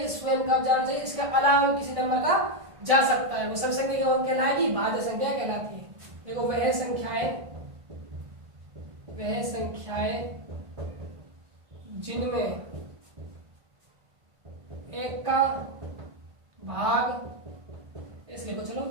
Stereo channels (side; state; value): left; late; 1.5 ms